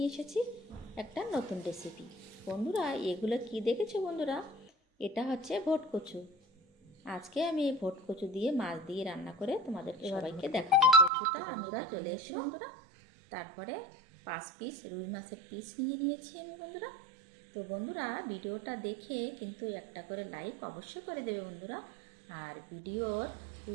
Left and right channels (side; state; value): left; drops out; at 11.1 s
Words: এসেছি একটা নতুন রেসিপি। বন্ধুরা, এগুলো কি দেখেছো বন্ধুরা? এটা হচ্ছে ভোটকচু। আজকে আমি এই ভোটকচু দিয়ে মাছ দিয়ে রান্না করে তোমাদের সবাইকে দেখাবো। কচুটা আমরা চলে এসো বন্ধুরা। তারপরে 5 পিস রুই মাছের পিস নিয়েছি আমি বন্ধুরা। তো বন্ধুরা, ভিডিওটা দেখে কিন্তু একটা করে লাইক অবশ্যই করে দেবে বন্ধুরা। আর ভিডিওর